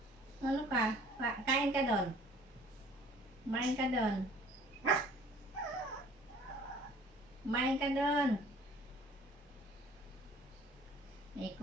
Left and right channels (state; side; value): normal; both; correlation 0.52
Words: Ano ka? Kain ka doon. Kumain ka doon. Kumain ka doon.